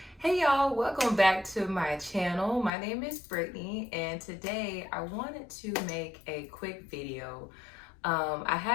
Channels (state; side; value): drops out; right; at 2.7 s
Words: hey y'all, welcome back to my channel. My name is Brittany and today I wanted to make a quick video. I